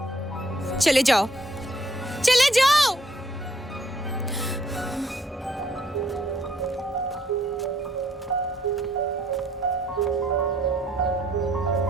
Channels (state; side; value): normal; both; correlation 0.66